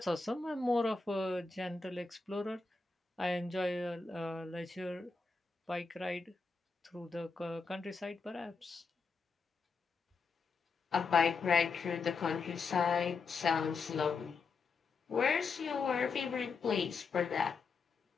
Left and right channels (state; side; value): quieter; right; 4.6 dB